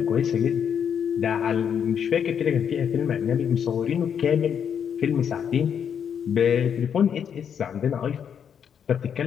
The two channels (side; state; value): right; quieter; 7.9 dB